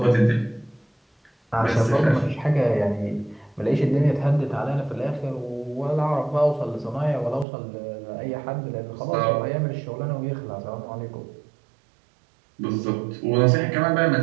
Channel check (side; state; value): left; drops out; at 7.5 s